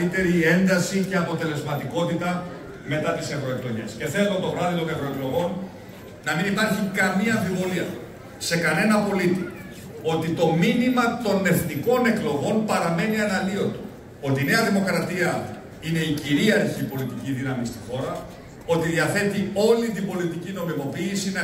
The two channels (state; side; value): identical; both; correlation 1.00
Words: ένταση και αποτελεσματικότητα μετά τις ευρωεκλογές. Και θέλω το βράδυ των ευρωεκλογών να μην υπάρχει καμία αμφιβολία σε κανένα πολίτη ότι το μήνυμα των εθνικών εκλογών παραμένει αναλύωτο. Ότι η Νέα Δημοκρατία είναι η κυρίαρχη πολιτική δύναμη στη χώρα, ότι διαθέτει όλη την πολιτική νομιμοποίηση να